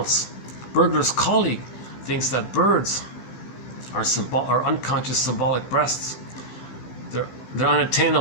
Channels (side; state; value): right; late; 16 ms